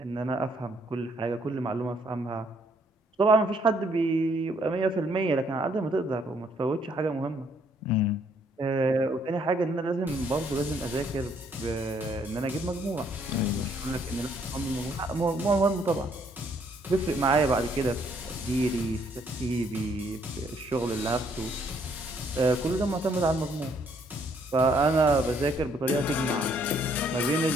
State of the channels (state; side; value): normal; both; correlation 0.68